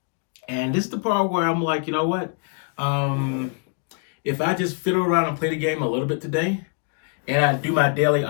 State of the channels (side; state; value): right; quieter; 39.0 dB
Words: And this is the part where I'm like, you know what? If I just fiddle around and play the game a little bit today, and I do my daily